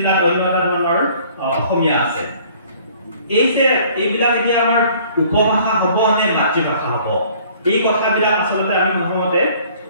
অন্য এটা ধৰণৰ অসমীয়া আছে। এইবিলাক এতিয়া আমাৰ উপভাষা হ'ব নে মাতৃভাষা হ'ব, এই কথাবিলাক আচলতে আমি প্ৰথমতে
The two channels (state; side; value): inverted; both; correlation -0.55